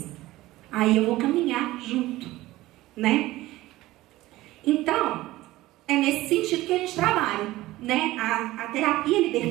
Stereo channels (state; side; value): quieter; left; 17.3 dB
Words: Aí eu vou caminhar junto, né? Então, é nesse sentido que a gente trabalha, né? A terapia